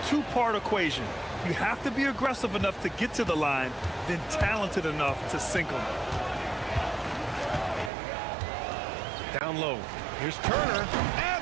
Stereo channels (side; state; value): left; drops out; at 7.9 s